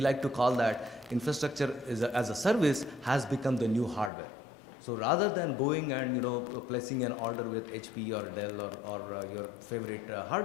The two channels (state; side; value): drops out; right; at 4.1 s